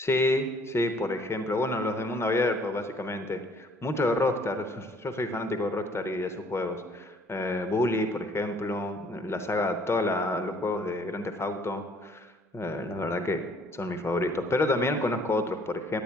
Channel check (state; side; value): normal; both; correlation 0.59